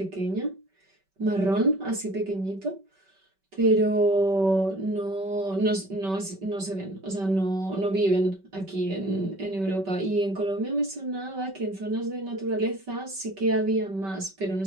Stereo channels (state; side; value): late; left; 5.2 ms